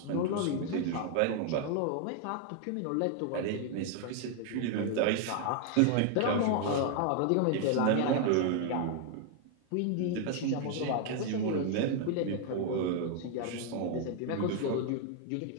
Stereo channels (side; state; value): both; different; correlation 0.00